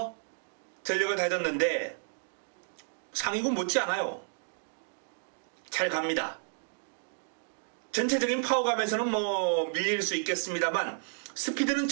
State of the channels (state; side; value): silent; left; digital silence